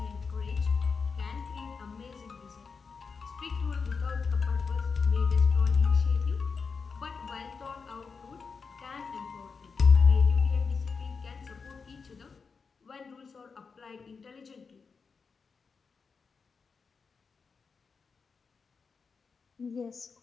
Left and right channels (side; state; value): right; quieter; 5.2 dB